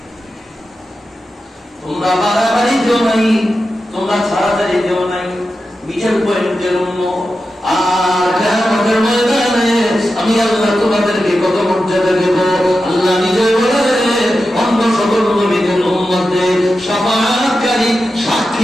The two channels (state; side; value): normal; both; correlation 0.91